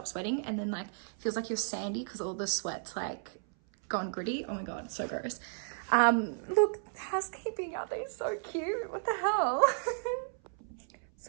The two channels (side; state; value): left; silent; 55 dB below the other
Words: sweating and then like feels like you're sandy because all the sweat's like gone gritty. Oh my God, so gross. Look, housekeeping, are they so cute? What the hell?